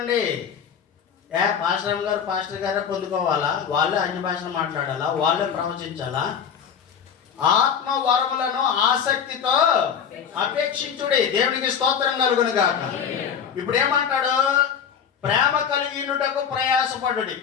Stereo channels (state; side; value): quieter; right; 7.6 dB